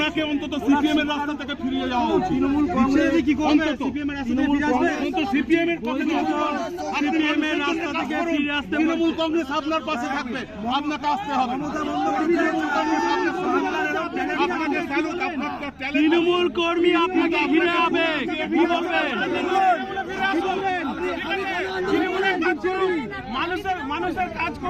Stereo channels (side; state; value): both; identical; correlation 1.00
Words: অন্তত সিপিএম এর রাস্তা থেকে ফিরিয়ে যাওয়া উচিত। তৃণমূল কংগ্রেস কি করবে? সিপিএম এর পথে তৃণমূল কংগ্রেস আপনার পাশে থাকবে, আপনাকে আসতে হবে। তৃণমূল কর্মী আপনাকে ঘিরে হবে, কি বলবেন? মানুষের কাজ